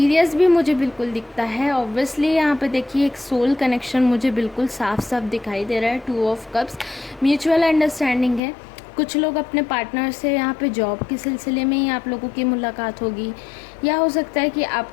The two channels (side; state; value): right; drops out; at 8.4 s